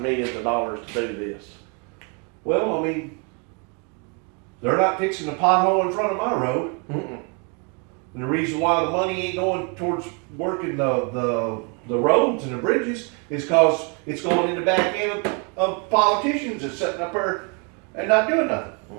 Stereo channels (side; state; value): left; quieter; 34.0 dB